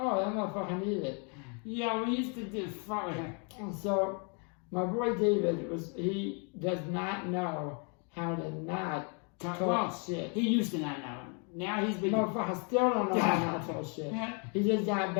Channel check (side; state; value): right; quieter; 37.3 dB